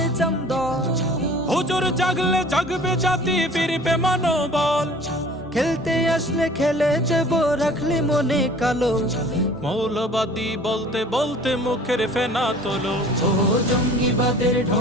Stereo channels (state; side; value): normal; both; correlation 0.48